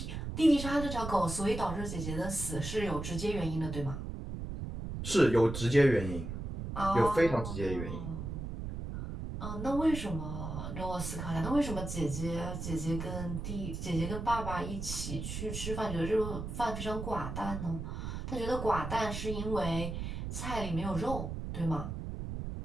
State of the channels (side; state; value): right; noise; rumble, 5 dB below the sound